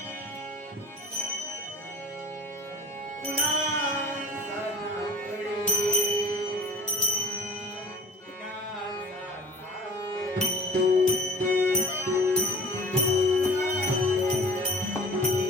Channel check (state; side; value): normal; both; correlation 0.44